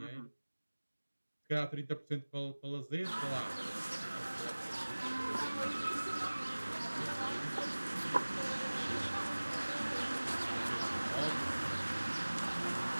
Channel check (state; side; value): inverted; both; correlation -1.00